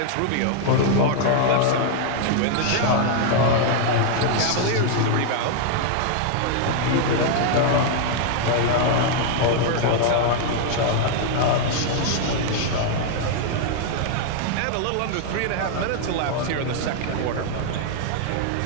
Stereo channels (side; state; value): both; different; correlation 0.00